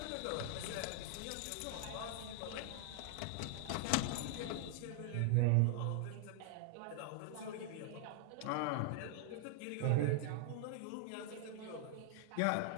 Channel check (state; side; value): different; both; correlation -0.01